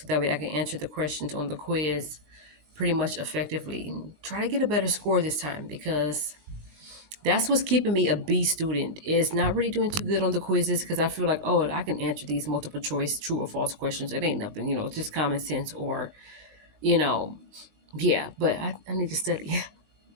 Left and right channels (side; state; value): left; late; 19 ms